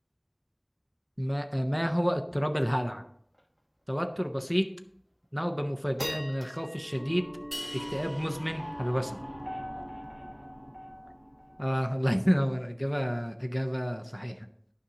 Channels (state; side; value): identical; both; correlation 1.00